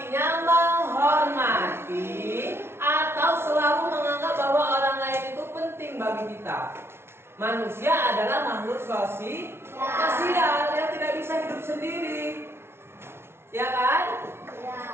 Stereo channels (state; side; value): late; left; 0.12 ms